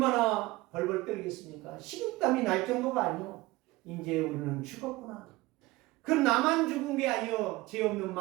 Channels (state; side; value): quieter; left; 20.1 dB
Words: 벌벌 떨겠습니까? 식은땀이 날 정도가 아니요. 이제 우리는 죽었구나. 그럼 나만 죽은 게 아니요. 죄 없는